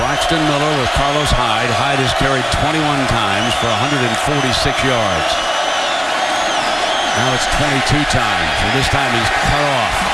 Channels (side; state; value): both; identical; correlation 1.00